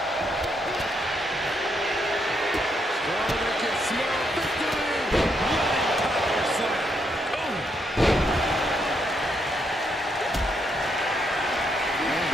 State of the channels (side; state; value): both; normal; correlation 0.77